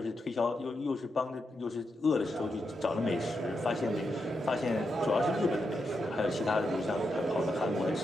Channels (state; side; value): normal; both; correlation 0.85